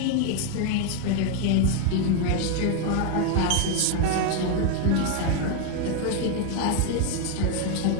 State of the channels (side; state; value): both; different; correlation 0.01